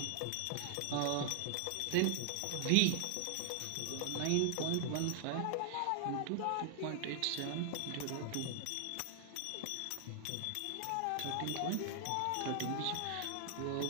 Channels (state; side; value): different; both; correlation -0.01